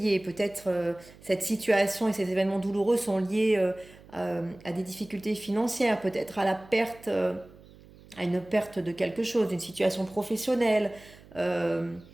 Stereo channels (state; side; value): noise; right; hum, 23 dB below the sound